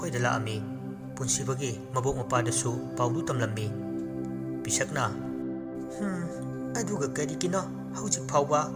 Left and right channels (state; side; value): identical; both; correlation 1.00